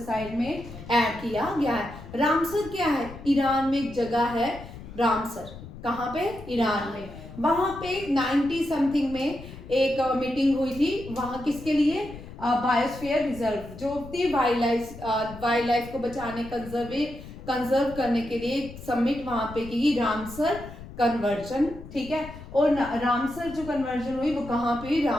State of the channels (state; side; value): noise; left; rumble, 14 dB below the sound